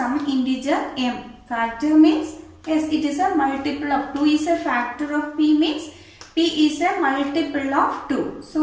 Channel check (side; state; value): both; identical; correlation 1.00